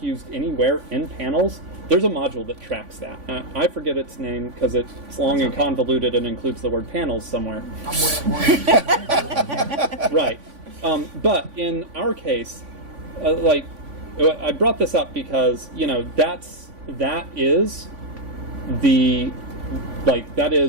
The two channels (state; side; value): late; left; 3.5 ms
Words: used anywhere in panels, there's a module that tracks that. I forget its name because it's long and convoluted and includes the word panels somewhere. Right. But in our case, like, I brought this up because, you know, that is